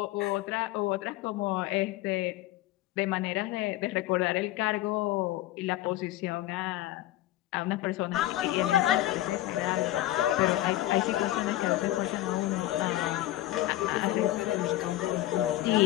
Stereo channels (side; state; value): right; quieter; 15.1 dB